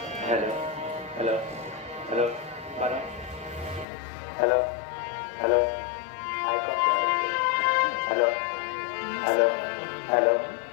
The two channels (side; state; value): right; drops out; at 3.9 s